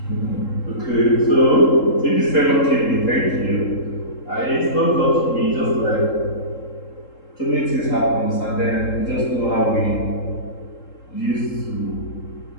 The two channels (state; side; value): late; right; 3.7 ms